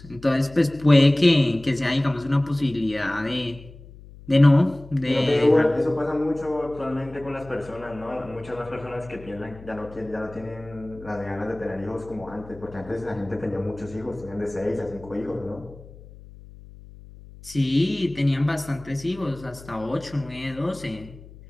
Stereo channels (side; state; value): left; noise; hum, 19 dB below the sound